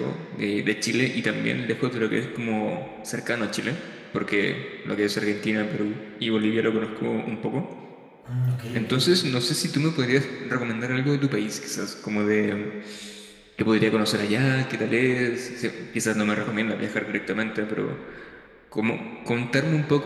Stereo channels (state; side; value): identical; both; correlation 1.00